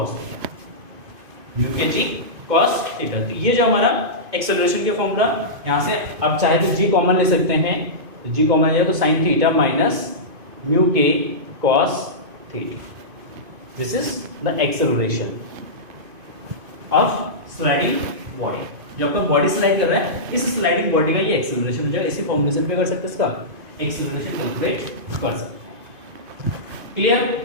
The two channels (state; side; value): late; left; 2.5 ms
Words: theta, mu k g cos theta. तो ये जो हमारा एक्सेलरेशन के फॉर्मूला, यहां से आप चाहे तो g कॉमन ले सकते हैं, तो g कॉमन लिया तो sin थीटा माइनस म्यू के cos theta. This is the acceleration of sliding body, जो आपका बॉडी स्लाइड कर रहा है, इस स्लाइडिंग बॉडी का ये एक्सेलरेशन हो जाएगा। इसी फॉर्मूले पे कर सकते हैं, इसका एक्सेलरेशन कैलकुलेट कर सकते हैं। क्लियर?